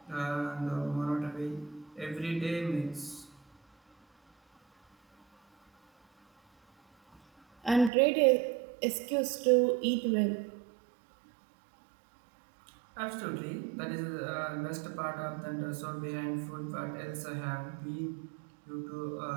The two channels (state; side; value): drops out; left; at 7.9 s